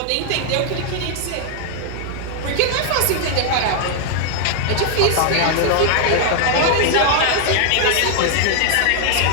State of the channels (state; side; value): different; both; correlation 0.00